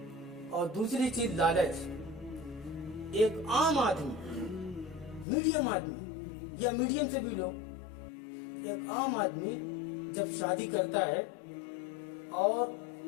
اور دوسری چیز لالچ۔ ایک عام آدمی، میڈیم آدمی یا میڈیم سے بھی لو، ایک عام آدمی جب شادی کرتا ہے اور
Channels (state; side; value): drops out; right; at 5.2 s